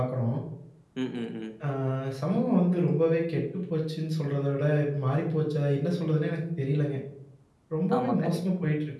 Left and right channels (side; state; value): both; identical; correlation 1.00